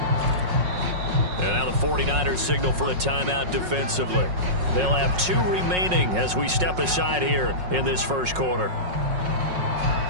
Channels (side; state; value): left; late; 5.5 ms